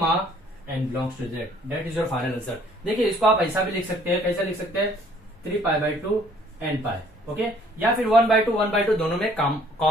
n belongs to z, that is your final answer. देखिए इसको आप ऐसा भी लिख सकते हैं, कैसा लिख सकते हैं, 3π/2 n पाई, ओके, या फिर 1/2 दोनों में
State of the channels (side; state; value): both; normal; correlation 0.59